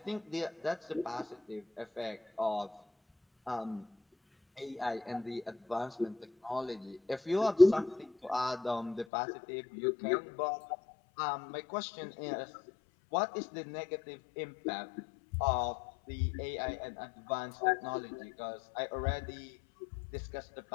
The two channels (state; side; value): drops out; right; at 9.1 s